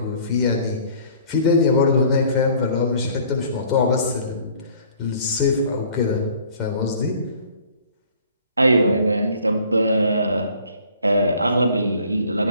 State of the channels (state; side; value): inverted; both; correlation -0.54